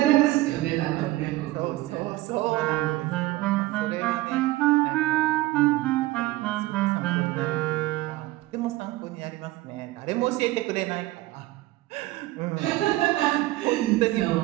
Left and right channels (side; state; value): left; quieter; 18.0 dB